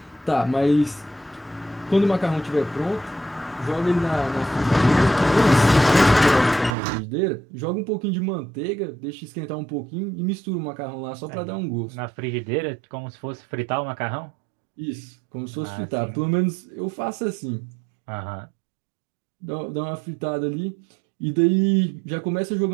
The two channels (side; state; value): left; drops out; at 6.8 s